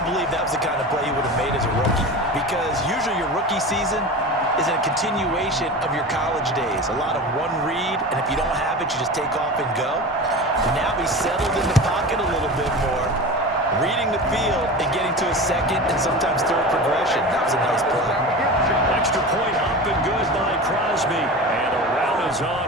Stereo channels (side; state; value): both; normal; correlation 0.31